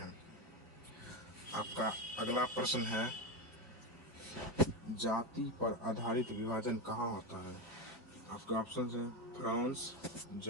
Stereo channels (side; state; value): both; normal; correlation 0.13